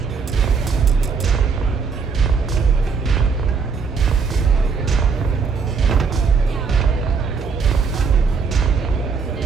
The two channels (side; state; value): left; quieter; 5.3 dB